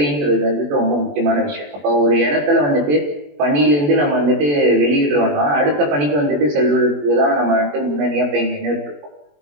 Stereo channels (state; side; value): late; left; 21 ms